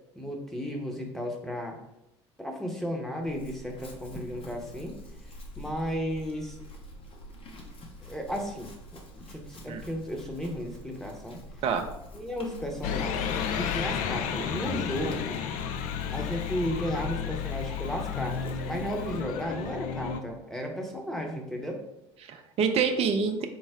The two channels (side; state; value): both; normal; correlation 0.41